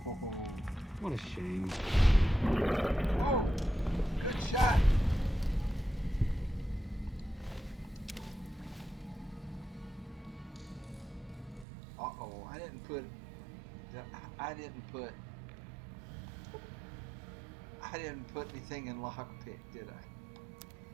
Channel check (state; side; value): drops out; left; at 11.7 s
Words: What a shame. Oh, good shot. Uh-oh, I didn't put anything in lockpick, did I?